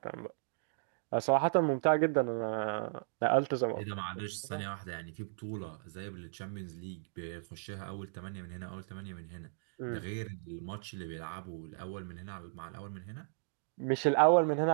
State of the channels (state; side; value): silent; left; digital silence